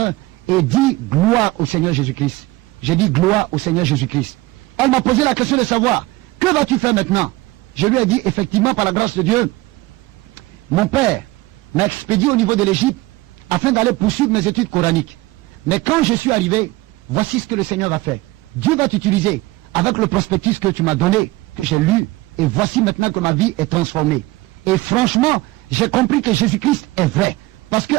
et dis gloire au Seigneur Jésus-Christ. J'ai dit gloire au Seigneur Jésus-Christ. Elle m'a posé la question de savoir, que vas-tu faire maintenant? Je lui ai dit, effectivement, par la grâce de Dieu, mon père m'a expédié au niveau de l'Égypte afin d'aller poursuivre mes études coraniques. Mais quand je suis arrivé, voici ce que le Seigneur va faire. Dieu va t'utiliser avec le prospectus que tu m'as donné, que j'ai lu, et voici maintenant que ma vie est transformée. Et franchement, j'ai compris que Jésus-Christ est vrai. Parce que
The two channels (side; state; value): left; quieter; 20.1 dB